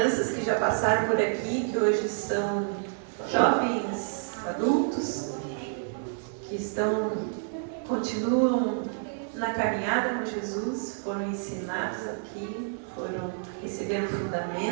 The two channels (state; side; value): silent; left; 56 dB below the other